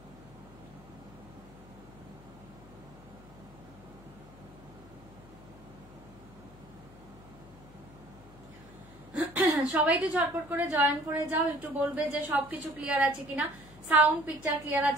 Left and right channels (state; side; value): noise; left; hum, 21 dB below the sound